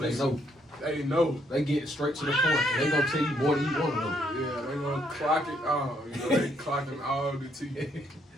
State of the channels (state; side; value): normal; both; correlation 0.71